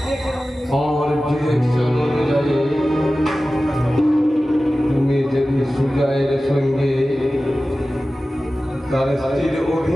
আমার ডিরেকশন অনুযায়ী তুমি যদি সুজয়ের সঙ্গে তার স্ত্রীর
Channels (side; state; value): both; normal; correlation 0.95